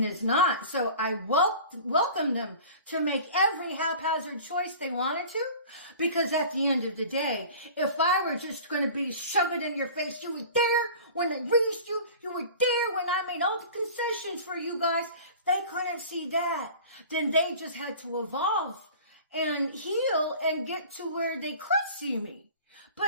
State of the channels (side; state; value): both; inverted; correlation -0.41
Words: is not. So I welcome them to make every haphazard choice they wanted to. Because at the end of the day, if I were just going to be shoved in your face, you were there when I raised you. You were there when I made all the concessions for you guys. If they couldn't see that, then they just had to evolve and heal and get to where they could see me.